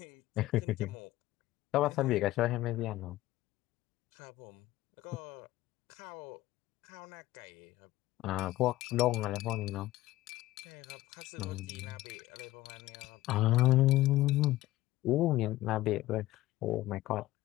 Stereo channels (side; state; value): right; quieter; 16.6 dB